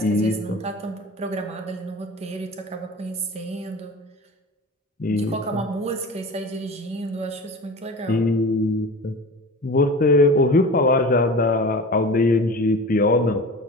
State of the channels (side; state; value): both; normal; correlation 0.35